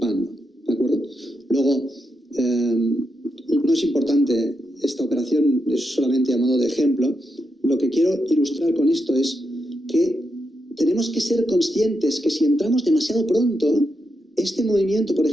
¿de acuerdo? Luego, no es importante esta operación, es solamente a modo de ejemplo. Lo que quiero ilustrar con esto es que tenemos que ser conscientes que si entramos demasiado pronto, este movimiento, por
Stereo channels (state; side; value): normal; both; correlation 0.84